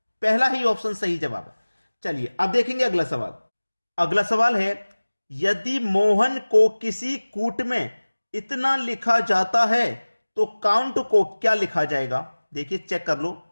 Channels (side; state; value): both; inverted; correlation -1.00